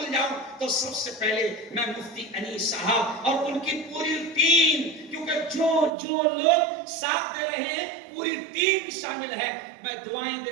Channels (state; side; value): drops out; left; at 5.9 s